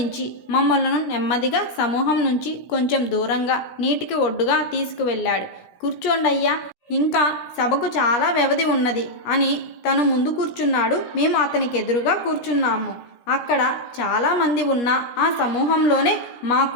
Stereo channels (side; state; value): right; late; 16 ms